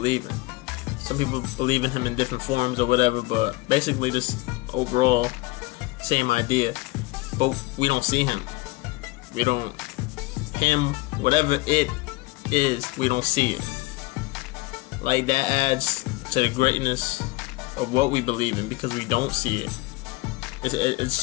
in. Some people believe in him in different forms or whatever, but basically this overall same idea. But we don't see him. We don't, him, whatever it is, we don't see it. Like, that adds to the greatness of what we believe in because we don't see it. It's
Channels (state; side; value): quieter; right; 22.1 dB